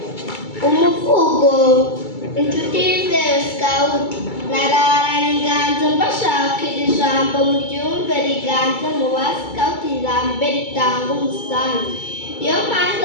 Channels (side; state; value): right; late; 2.3 ms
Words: Umuvugo: inshuti yizewe Scout. Nararanye inganzo mbashakira ijambo muryumve riganze mu ba Scout, ijambo ritanga umusanzu. Iyo mpanze